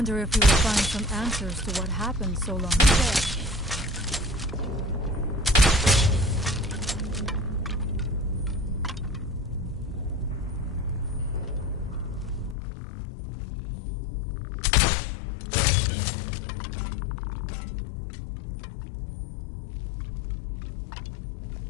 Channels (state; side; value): drops out; right; at 12.6 s